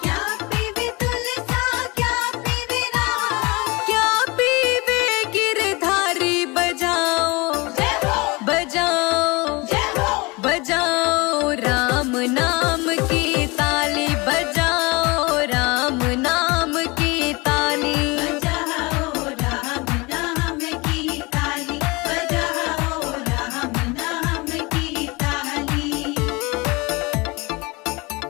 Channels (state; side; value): quieter; right; 25.4 dB